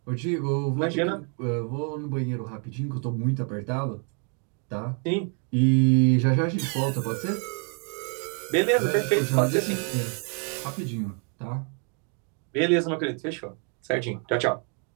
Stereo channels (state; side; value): quieter; left; 38.1 dB